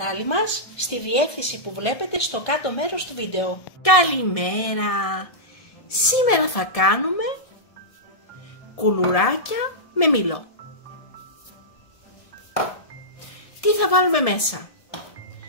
μας στη διεύθυνση που βλέπετε στο κάτω μέρος του βίντεο. Καλημέρα! Σήμερα θα κάνουμε κουλουράκια με μήλο. Τι θα βάλουμε μέσα?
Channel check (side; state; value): right; late; 1.7 ms